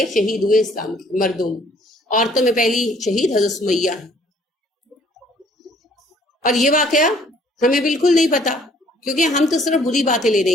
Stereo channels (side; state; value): both; normal; correlation 0.60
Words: شہید ہوئے اسلام کے مردوں میں. عورتوں میں پہلی شہید حضرت سمیہ ہے. اور یہ واقعہ ہمیں بالکل نہیں پتا کیونکہ ہم تو صرف بری باتیں لینے